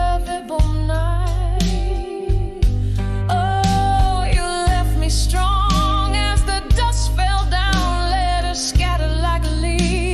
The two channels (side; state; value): both; identical; correlation 1.00